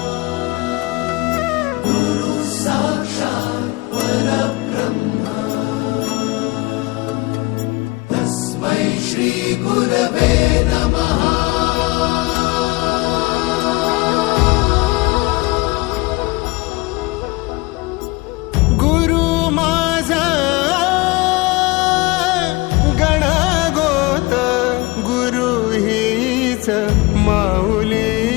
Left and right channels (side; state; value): right; quieter; 23.0 dB